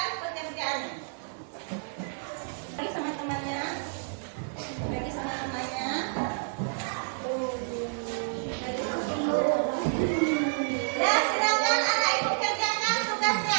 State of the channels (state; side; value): silent; left; digital silence